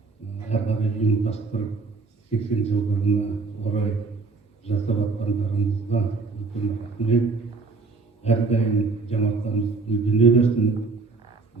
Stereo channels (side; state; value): left; quieter; 4.1 dB